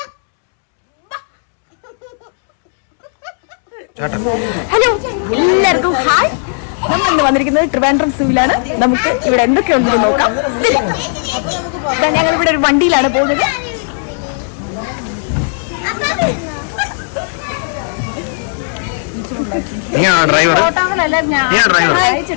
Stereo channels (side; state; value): right; silent; digital silence